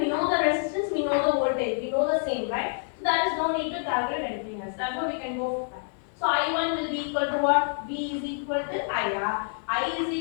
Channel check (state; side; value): silent; right; digital silence